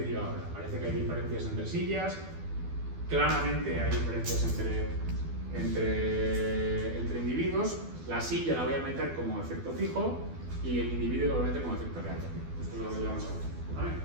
yo ahora. Parece que hay diferencias entre sillas, claramente hay diferencias entre individuos. La silla la voy a meter como efecto fijo y el individuo lo voy a meter como efecto real. Esto es lo que vamos a hacer. ¿Vale?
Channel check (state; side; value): late; left; 12 ms